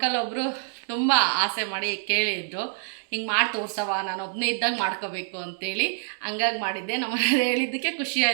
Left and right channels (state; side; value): silent; left; digital silence